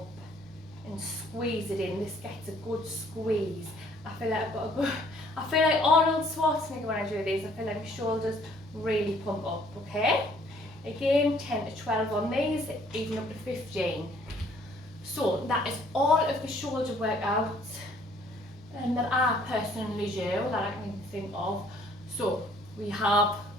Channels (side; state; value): both; normal; correlation 0.61